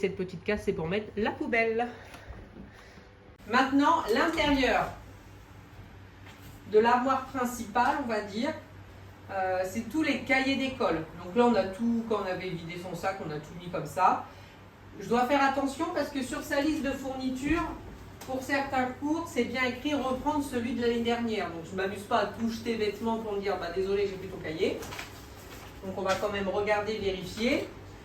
petite case, c'est pour mettre la poubelle. Maintenant, l'intérieur de l'armoire principale, on va dire, c'est tous les cahiers d'école. Donc là, on a tout, quand on avait vidé son sac, on a tout mis comme ça. Je dois faire attention parce que sur sa liste de fournitures, pour certains cours, c'est bien écrit reprendre celui de l'année dernière. Donc je ne m'amuse pas à tout jeter bêtement pour me dire bah, désolé, j'ai plus ton cahier. Donc on va quand même regarder, vérifier.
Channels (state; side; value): identical; both; correlation 1.00